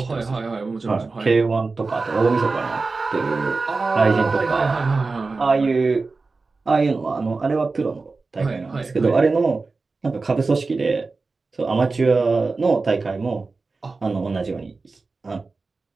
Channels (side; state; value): left; quieter; 3.9 dB